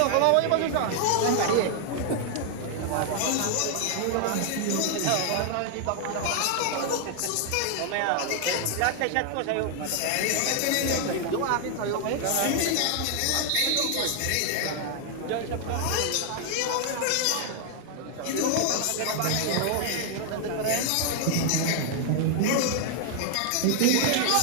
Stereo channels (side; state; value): both; different; correlation 0.00